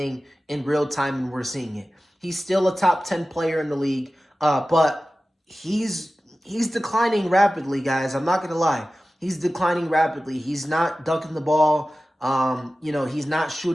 in real time, and we're seeing it. He's still a top 10 player in the league, but he's declining rapidly, guys. I'm not going to lie. He's declining rapidly. He's not dunking the ball. He's not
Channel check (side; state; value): both; normal; correlation 0.95